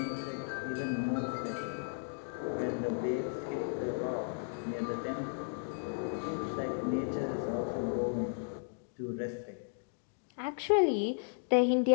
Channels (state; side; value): silent; right; digital silence